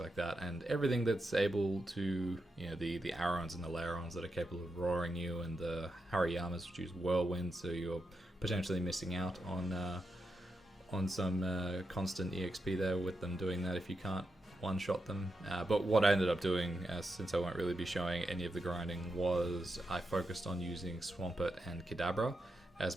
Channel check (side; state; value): both; normal; correlation 0.86